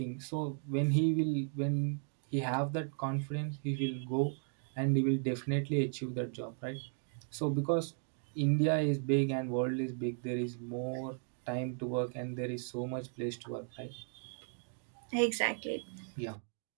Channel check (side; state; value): left; silent; 54 dB below the other